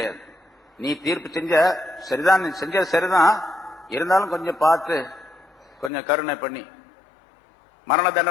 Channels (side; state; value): right; drops out; at 5.9 s